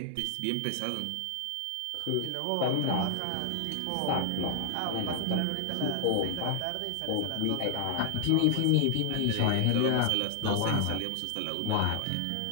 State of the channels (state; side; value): different; both; correlation 0.00